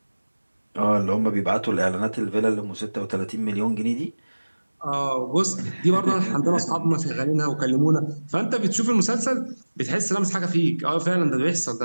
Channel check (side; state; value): both; inverted; correlation -1.00